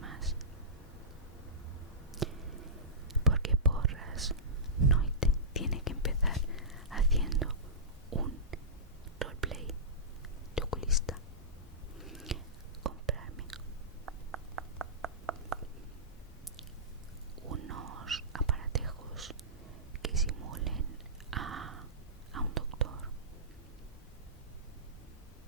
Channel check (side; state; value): both; normal; correlation -0.19